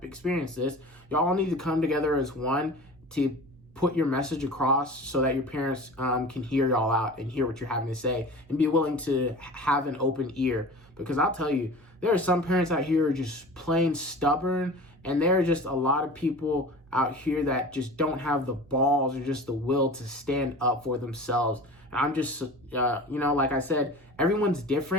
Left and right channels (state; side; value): noise; right; hum, 28 dB below the sound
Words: experienced this. Y'all all need to come together as one to put your message across so that your parents can hear y'all out and hear what you're having to say and be willing to have an open ear. Because I'll tell you, there are some parents out here who are just plain stubborn, and there are just a lot of people out here that just don't have the balls or just the will to stand up for themselves. And I'm just, like I said, everyone's